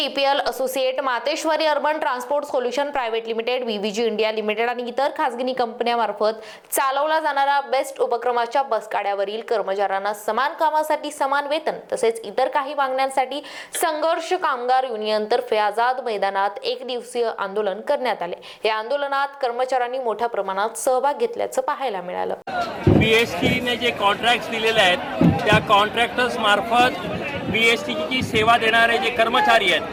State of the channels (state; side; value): identical; both; correlation 1.00